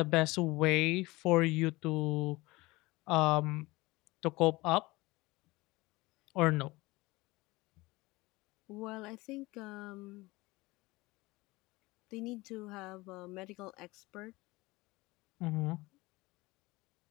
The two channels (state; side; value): quieter; right; 21.5 dB